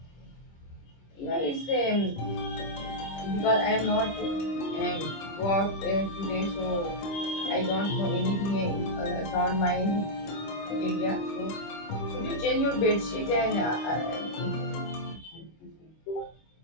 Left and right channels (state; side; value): late; right; 25 ms